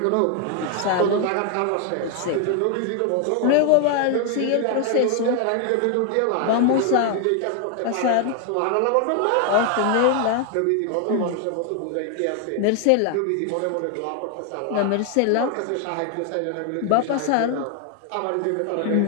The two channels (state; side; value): different; both; correlation 0.00